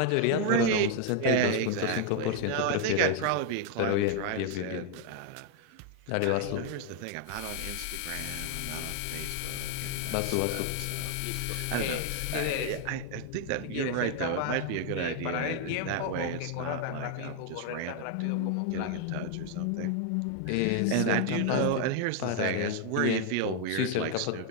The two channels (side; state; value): both; different; correlation 0.01